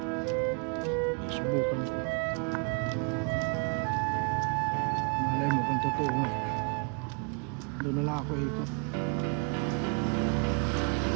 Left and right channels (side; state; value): left; quieter; 36.8 dB